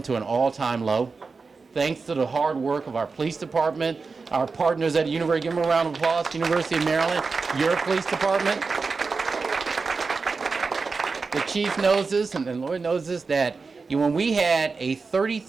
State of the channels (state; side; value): quieter; left; 4.5 dB